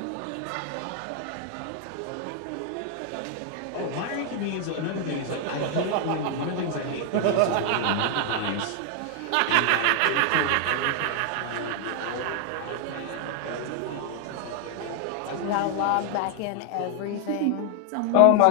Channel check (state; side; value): different; both; correlation 0.00